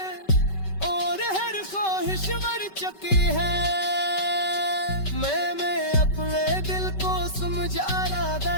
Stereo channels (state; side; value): late; right; 5.2 ms